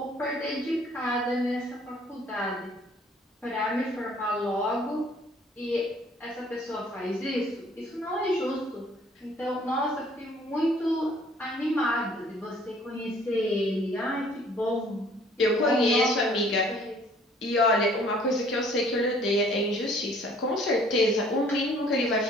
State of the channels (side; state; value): both; normal; correlation 0.57